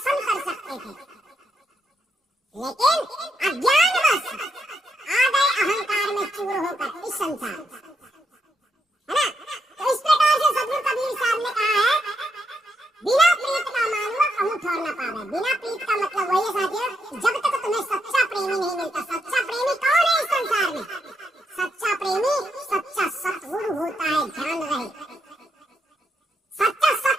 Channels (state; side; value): normal; both; correlation 0.80